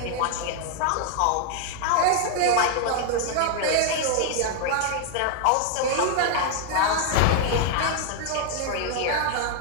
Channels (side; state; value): both; different; correlation 0.00